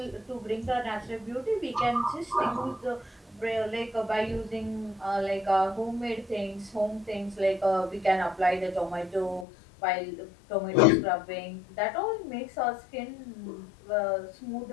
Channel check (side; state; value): right; drops out; at 9.5 s